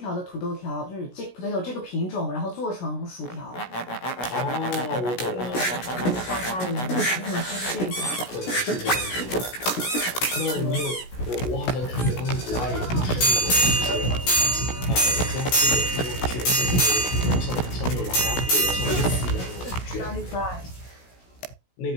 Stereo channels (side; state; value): right; late; 16 ms